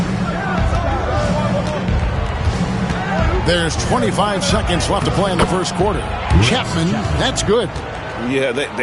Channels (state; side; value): identical; both; correlation 1.00